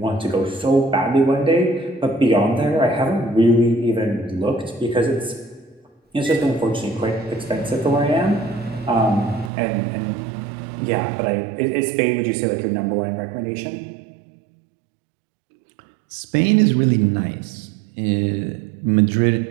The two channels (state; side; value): drops out; left; at 9.5 s